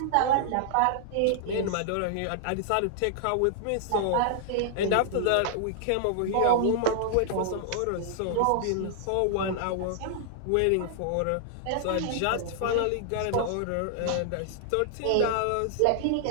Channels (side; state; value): both; different; correlation -0.01